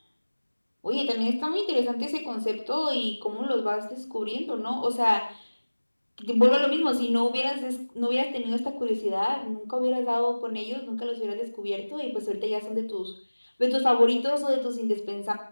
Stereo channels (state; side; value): inverted; both; correlation -1.00